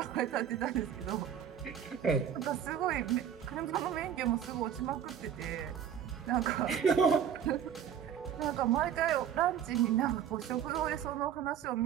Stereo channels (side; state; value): left; quieter; 8.8 dB